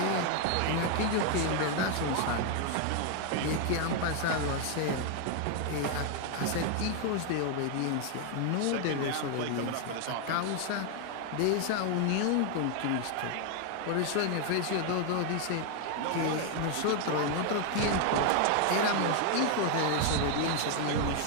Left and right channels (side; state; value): both; different; correlation 0.01